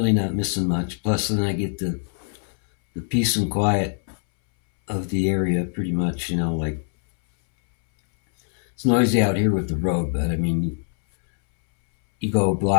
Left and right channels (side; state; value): right; silent; 63 dB below the other